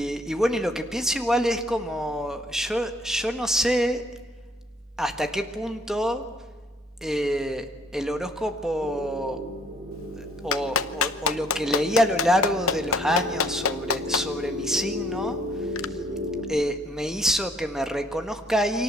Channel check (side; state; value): both; normal; correlation 0.62